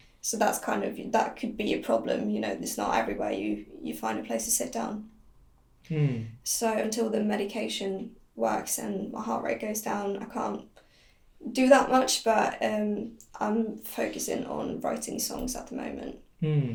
So that's that could be a problem. It's not everywhere you find a place to sit down. So until the medication works and my heart rate goes down, I can't do that much, but I'm focusing on writing songs at the moment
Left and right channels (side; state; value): both; identical; correlation 1.00